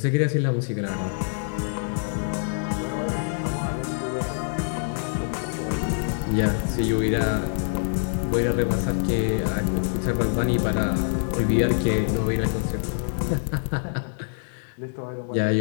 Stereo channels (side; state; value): right; silent; digital silence